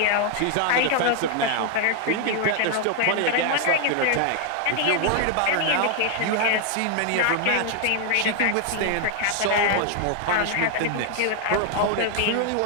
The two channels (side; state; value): both; different; correlation 0.00